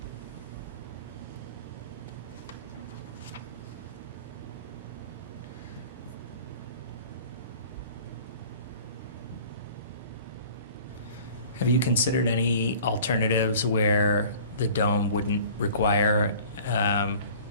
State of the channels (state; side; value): inverted; both; correlation -0.46